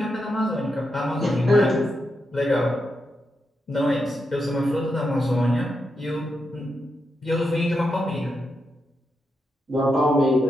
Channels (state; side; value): normal; both; correlation 0.85